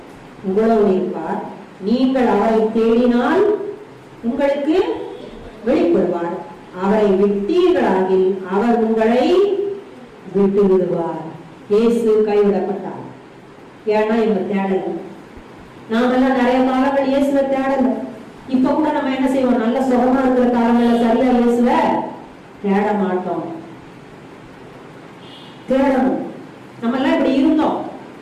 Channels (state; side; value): identical; both; correlation 1.00